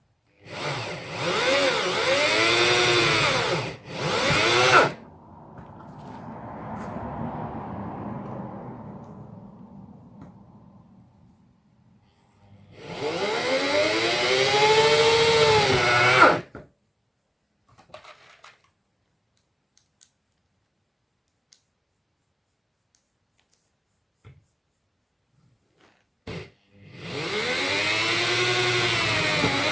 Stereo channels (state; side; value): identical; both; correlation 1.00